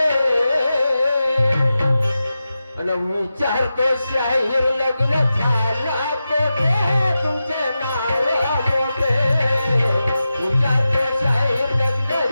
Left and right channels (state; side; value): inverted; both; correlation -0.92